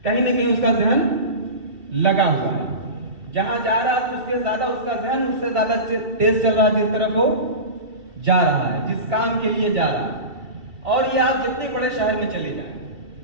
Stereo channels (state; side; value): late; left; 2.7 ms